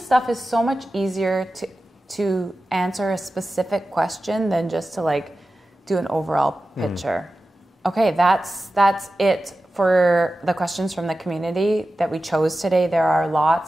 stuff is so much easier to answer a specific question than just to like do an overall picture. Okay, that's it for the questions from the community that we chose today. There are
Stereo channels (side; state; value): both; normal; correlation 0.94